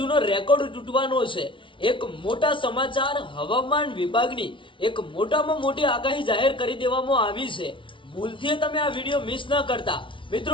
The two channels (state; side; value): late; right; 0.25 ms